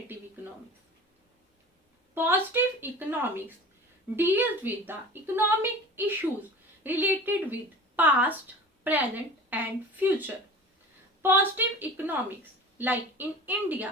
economics. Positive economics deals with the economic issues related with past, present and future. Positive economics, like in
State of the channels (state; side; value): normal; both; correlation 0.37